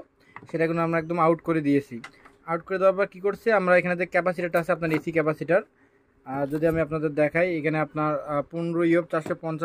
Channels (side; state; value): both; identical; correlation 1.00